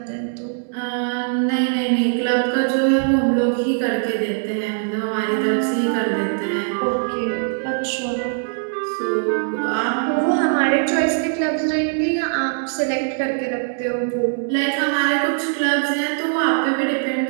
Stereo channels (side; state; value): left; silent; digital silence